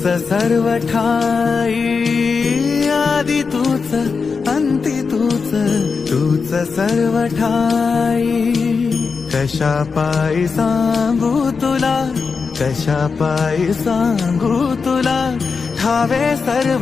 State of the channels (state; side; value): quieter; right; 5.1 dB